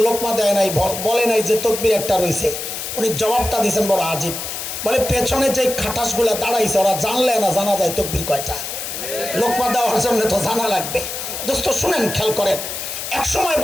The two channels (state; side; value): noise; left; hiss, 6 dB below the sound